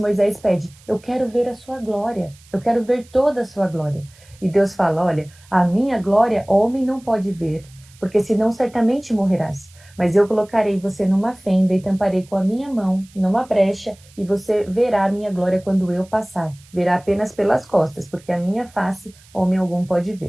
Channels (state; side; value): noise; right; hiss, 27 dB below the sound